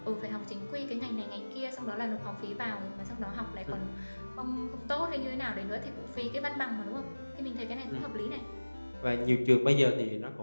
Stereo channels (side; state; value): both; inverted; correlation -1.00